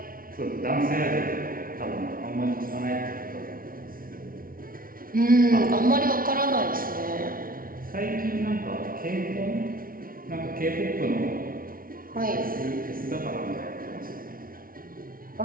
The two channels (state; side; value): late; left; 0.42 ms